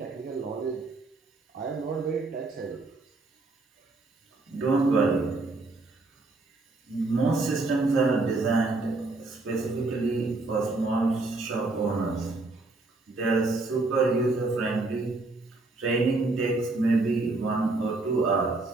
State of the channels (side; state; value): left; quieter; 3.3 dB